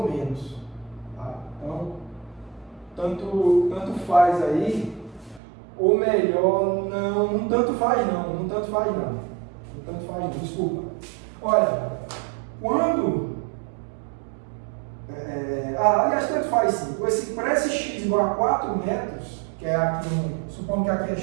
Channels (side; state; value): left; drops out; at 5.4 s